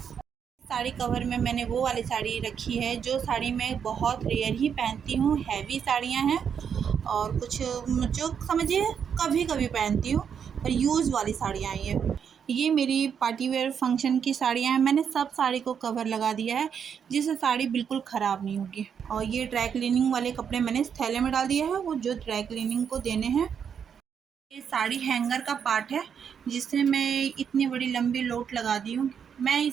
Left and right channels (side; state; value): left; quieter; 7.5 dB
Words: साड़ी कवर में मैंने वो वाली साड़ी रखी है जो साड़ी मैं बहुत रेयर ही पहनती हूँ, हैवी साड़ियाँ हैं, और कुछ जो समझिए कभी कभी पहनती हूँ, पर यूज़ वाली साड़ियाँ हैं ये मेरी पार्टी वेयर फंक्शन की साड़ियाँ हैं। मैंने सब साड़ी को कवर लगा दिया है, जिससे साड़ी बिल्कुल ख़राब नहीं होगी। और ये ड्राई क्लीनिंग वाले कपड़े मैंने इस थैले में डाल दिया है, वो जो ड्राई क्लीनिंग को देने हैं। ये साड़ी हैंगर का पार्ट है, जिससे मैं इतनी बड़ी लंबी लोट लगा दी हूँ। मैं